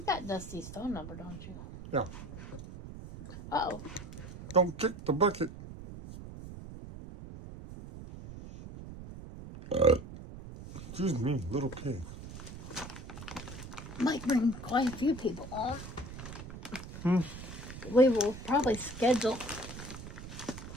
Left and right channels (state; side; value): noise; right; rumble, 12 dB below the sound